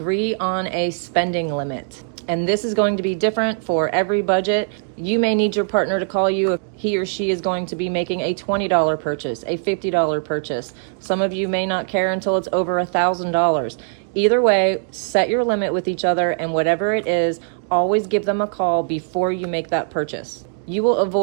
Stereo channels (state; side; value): silent; left; digital silence